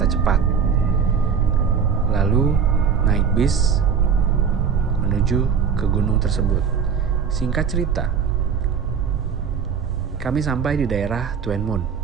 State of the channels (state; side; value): quieter; left; 6.6 dB